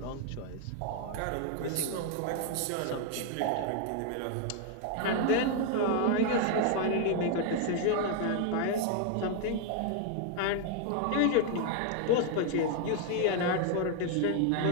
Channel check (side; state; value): both; different; correlation 0.00